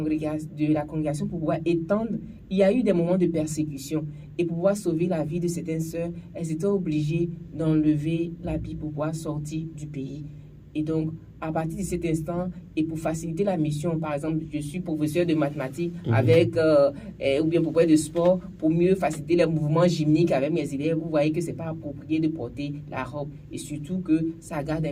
pour pouvoir étendre, il y a eu des moments de persécution. Et pour pouvoir sauver la vie de certaines sœurs, elles étaient obligées d'enlever l'habit pour pouvoir sortir du pays. Et donc, à partir de cet instant, et pour faciliter la mission, par exemple, je suis professeur de mathématiques ou bien professeur de sport, pour mieux faciliter les mouvements gymniques avec mes élèves, vous voyez que ce n'est pas approprié de porter la robe. Et surtout que ça garde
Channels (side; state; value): both; identical; correlation 1.00